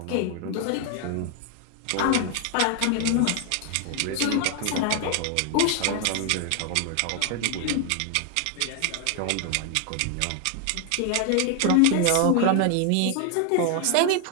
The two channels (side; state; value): both; different; correlation 0.00